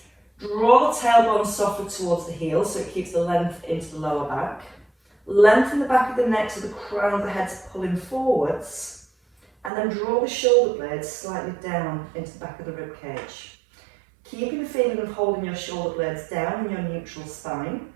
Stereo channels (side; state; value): left; drops out; at 9.7 s